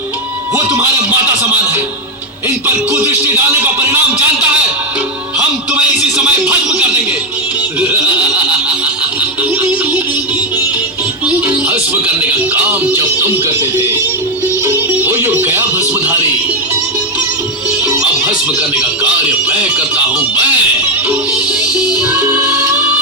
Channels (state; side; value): normal; both; correlation 0.04